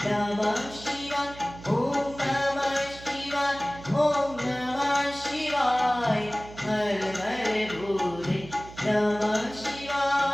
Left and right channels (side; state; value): right; noise; hum, 16 dB below the sound